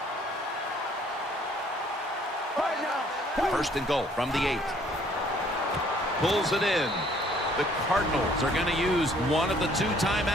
First and goal from the 8. Pulls it in. The Cardinals are going to use one of the 2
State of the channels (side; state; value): both; normal; correlation 0.60